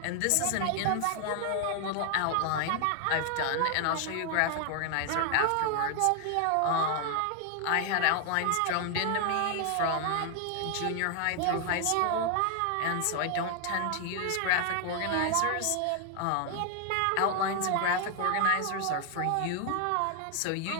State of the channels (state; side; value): different; both; correlation 0.00